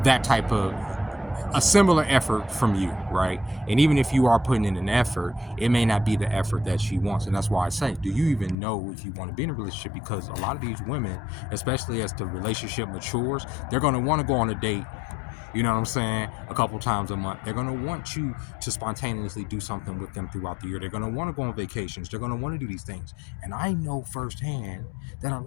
that type of a similar effort from you, right? And even if you are putting in an effort, it may not be the effort that she wants. And that's why I say, do you even know if you want to be in a relationship? Because a lot of these women, especially as the relationship matures, they're going to want to go on a date, you know what I'm saying, a couple times a month. They're going to want you to spontaneously do something with them throughout the year. They're going to want to go on vacations. They're going to want to do these things. And I know firsthand that a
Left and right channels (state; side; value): drops out; right; at 8.6 s